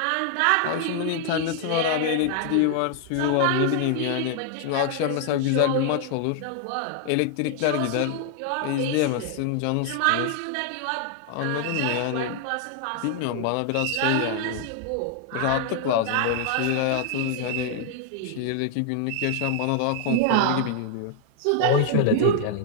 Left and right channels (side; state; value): both; different; correlation 0.00